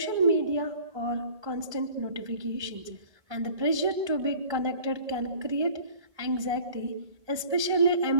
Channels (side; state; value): left; late; 1.3 ms